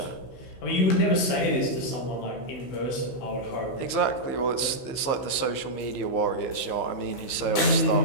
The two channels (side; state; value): right; late; 15 ms